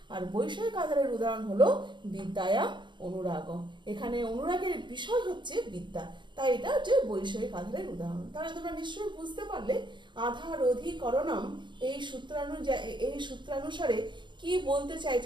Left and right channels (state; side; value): late; left; 0.23 ms